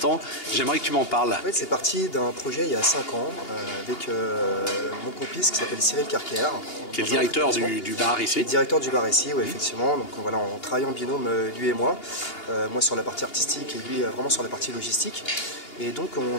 J'aimerais que tu m'en parles. En fait, c'est parti d'un projet il y a 5 ans avec mon complice qui s'appelle Cyril Carker. Qui est le directeur du bar ici. Le directeur du bar ici, oui, effectivement. Donc voilà, on travaille en binôme, lui et moi. Moi sur la partie artistique et lui vraiment sur la partie logistique. Et donc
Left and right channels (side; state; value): right; late; 2.8 ms